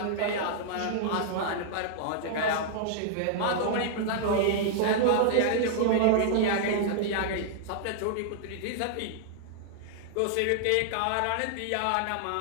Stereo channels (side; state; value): both; different; correlation -0.01